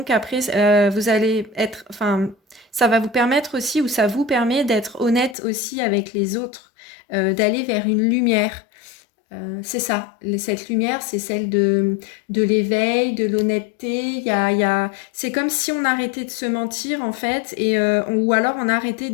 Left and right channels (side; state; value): right; drops out; at 5.4 s